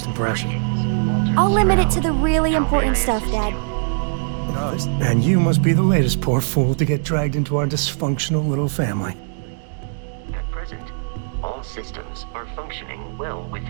impression. Greetings, Walter I'll limit it to Stroud. the really How may important I stuff, assist Dad. you? And you must be the latest poor fool to get dragged into our dysfunctional little family. At present, all systems are functioning well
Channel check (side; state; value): left; silent; digital silence